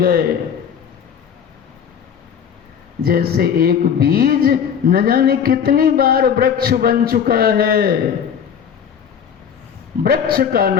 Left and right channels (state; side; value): quieter; right; 7.8 dB